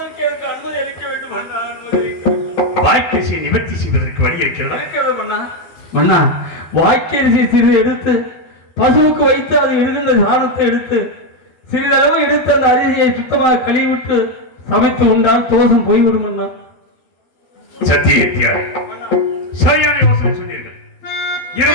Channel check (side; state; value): right; late; 13 ms